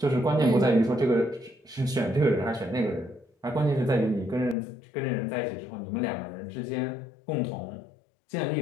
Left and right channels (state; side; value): drops out; right; at 4.5 s